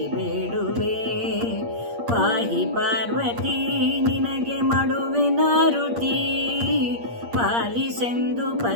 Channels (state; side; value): late; left; 8.6 ms